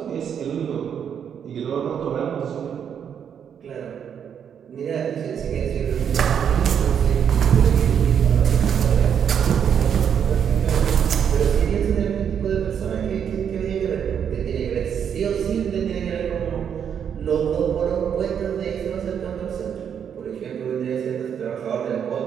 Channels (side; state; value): left; quieter; 8.1 dB